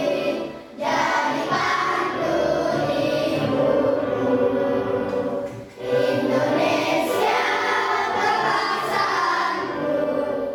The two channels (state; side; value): identical; both; correlation 1.00